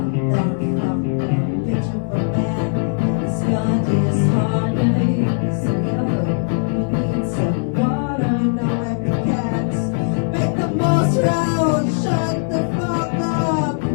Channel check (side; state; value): right; silent; 66 dB below the other